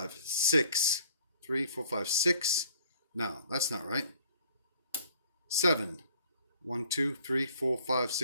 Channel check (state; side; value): inverted; both; correlation -0.58